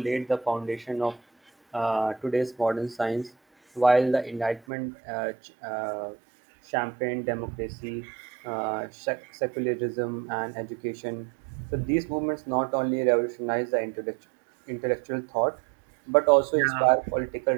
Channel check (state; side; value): drops out; left; at 4.6 s